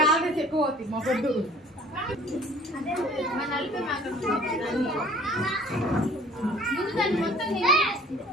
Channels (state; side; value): normal; both; correlation 0.51